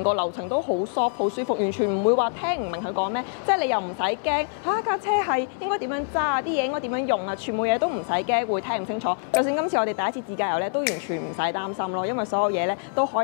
個流程都好 soft 好舒服，完全唔會話聽唔明佢講咩，即係你又唔使驚嚇架車係應該點樣揸啊，啲嘢應該點樣用啊，全部嘢都唔使驚會聽唔清楚。就算今次我哋第一次自駕遊咧，都完全唔使擔心咯，因為所有嘢咧都可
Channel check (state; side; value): silent; right; 62 dB below the other